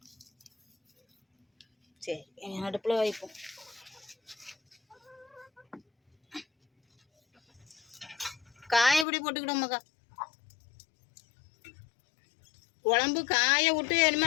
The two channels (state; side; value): drops out; right; at 9.1 s